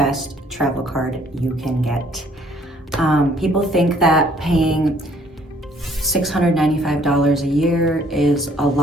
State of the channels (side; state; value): both; normal; correlation 0.61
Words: travel card you can get. People think that paying $695 a year is a